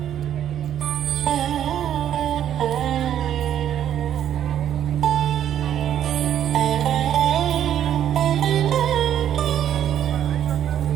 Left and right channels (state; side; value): quieter; left; 10.4 dB